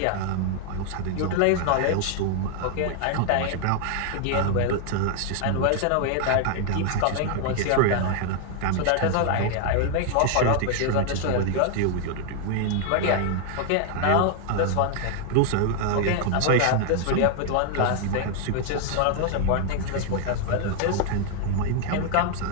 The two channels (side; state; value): both; different; correlation 0.00